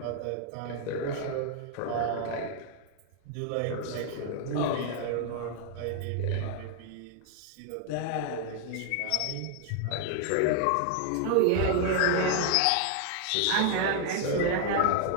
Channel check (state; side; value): different; both; correlation 0.00